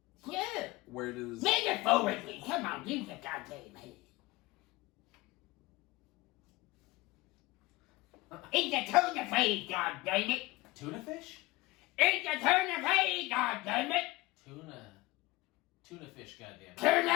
Yeah. Where does? Metaphorically, come on, use the goddamn head. It's a turn of phrase, goddammit. Tuna fish? It's a turn of phrase, goddammit. Tuna fish, goddamn. Turn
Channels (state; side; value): quieter; right; 20.8 dB